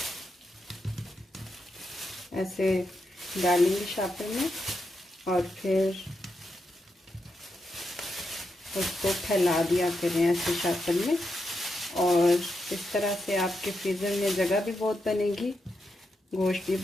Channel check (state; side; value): normal; both; correlation 0.85